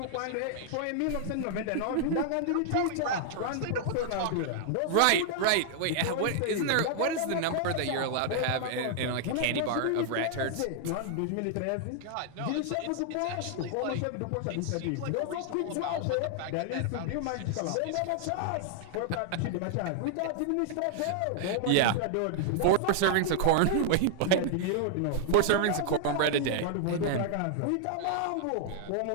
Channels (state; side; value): different; both; correlation -0.01